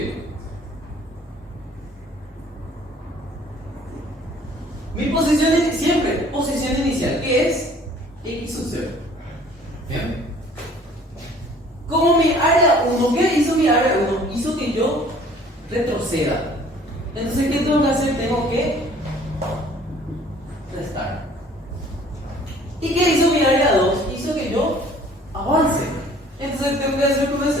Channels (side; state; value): both; normal; correlation 0.54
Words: Mi posición siempre, posición inicial, que es X sub 0. Bien. Como mi área 1, ¿qué hizo mi área 1? Hizo que yo retroceda. Entonces, ¿qué tengo que hacer? Tengo que restar. ¿Y qué hizo mi área 2? Hizo que yo avance. Entonces, ¿tengo que hacer con